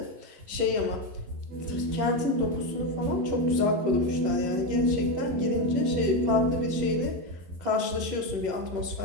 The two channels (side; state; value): left; late; 11 ms